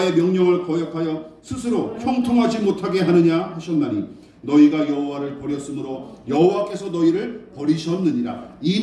명령을 거역하여 스스로 형통하지 못하게 하느냐 하셨나니 너희가 여호와를 버렸으므로 여호와께서 너희를 버리셨느니라. 이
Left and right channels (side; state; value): both; identical; correlation 1.00